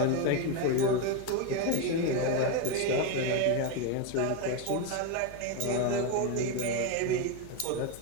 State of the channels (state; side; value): different; both; correlation 0.03